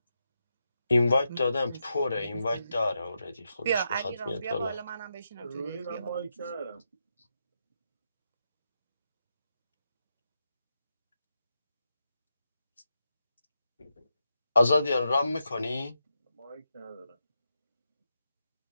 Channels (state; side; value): inverted; both; correlation -0.85